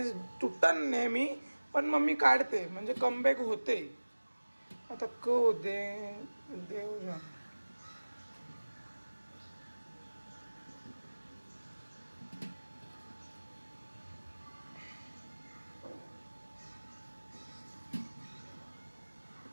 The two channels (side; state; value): both; inverted; correlation -1.00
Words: तुटतान नेहमी, पण मम्मी काढते म्हणजे कमबॅक होते. आता होते देव जाण.